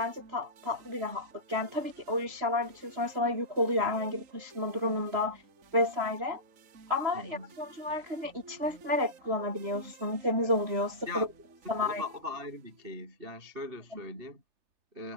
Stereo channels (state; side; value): late; left; 3.3 ms